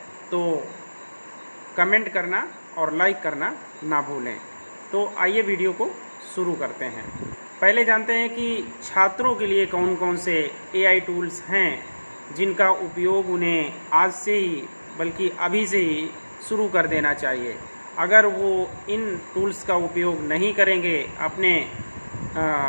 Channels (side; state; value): both; inverted; correlation -1.00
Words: तो कमेंट करना और लाइक करना ना भूलें। तो आइए वीडियो को शुरू करते हैं। पहले जानते हैं कि छात्रों के लिए कौन कौन से एआई टूल्स हैं जिनका उपयोग उन्हें आज से ही, बल्कि अभी से ही शुरू कर देना चाहिए। अगर वो इन टूल्स का उपयोग नहीं करेंगे अपने